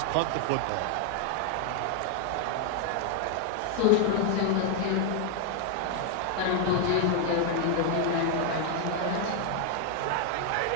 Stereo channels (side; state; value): both; different; correlation 0.01